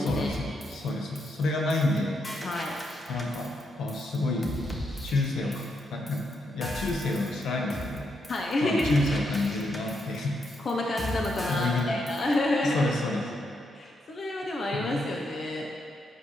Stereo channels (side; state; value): both; normal; correlation 0.80